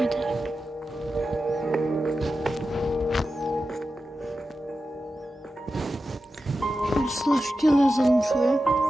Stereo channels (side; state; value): both; normal; correlation 0.91